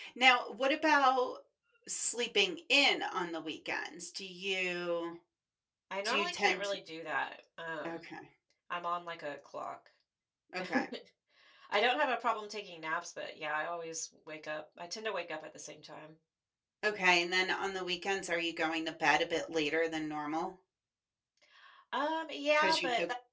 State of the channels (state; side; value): identical; both; correlation 1.00